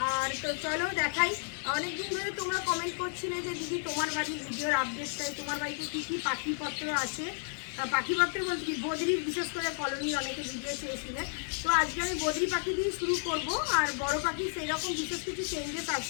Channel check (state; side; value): silent; right; 56 dB below the other